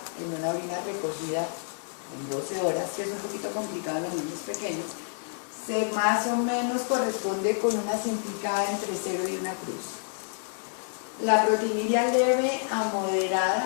en una orina recogida en 12 horas, que es un poquito complicado en los niños pequeños, se más o menos corresponde con una cintica entre 0 y una cruz. La proteinuria leve a moderada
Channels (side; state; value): right; silent; 59 dB below the other